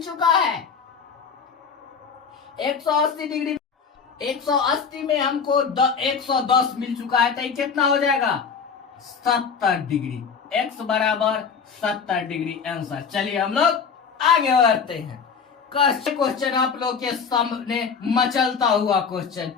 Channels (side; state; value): right; quieter; 6.0 dB